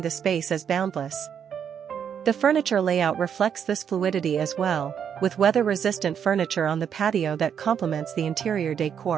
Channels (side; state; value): left; quieter; 8.1 dB